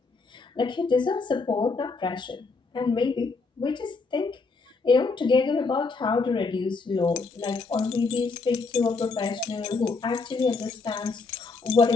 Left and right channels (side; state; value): right; quieter; 4.2 dB